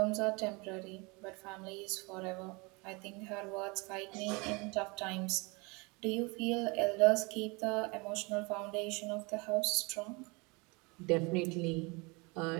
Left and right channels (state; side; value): quieter; left; 28.2 dB